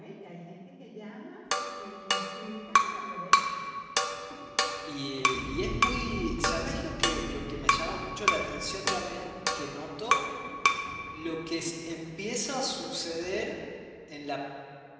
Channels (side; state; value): both; identical; correlation 1.00